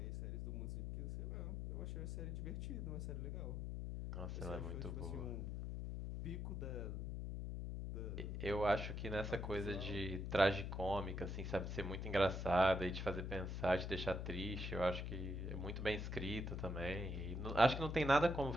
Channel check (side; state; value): left; noise; hum, 3 dB below the sound